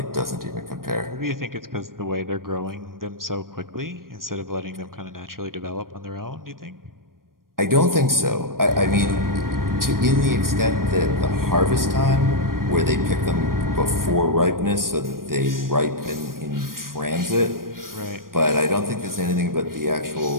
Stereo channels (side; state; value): left; late; 0.91 ms